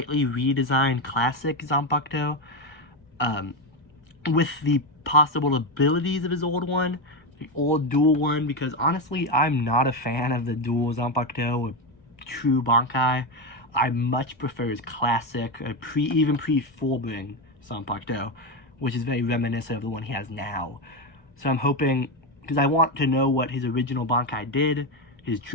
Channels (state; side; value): late; right; 1.3 ms